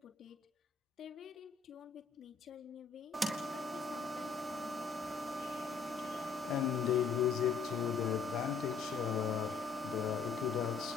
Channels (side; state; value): right; quieter; 5.2 dB